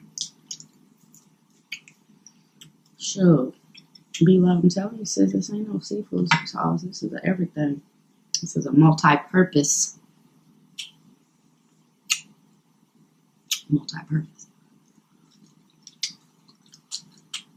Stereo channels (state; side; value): identical; both; correlation 1.00